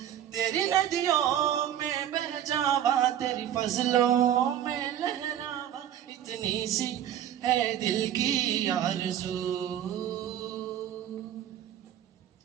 तेरी नदियों में बह जावा तेरी फजलों में लहरावा इतनी सी है दिल की आरज़ू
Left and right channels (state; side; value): quieter; left; 10.7 dB